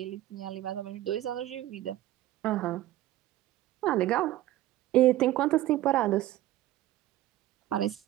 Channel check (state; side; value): quieter; left; 15.0 dB